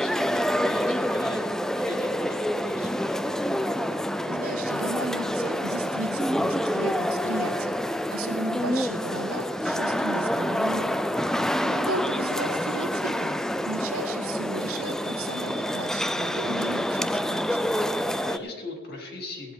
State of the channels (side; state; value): both; normal; correlation 0.83